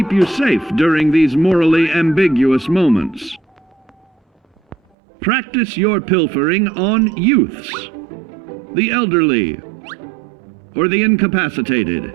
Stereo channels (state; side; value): drops out; left; at 4.8 s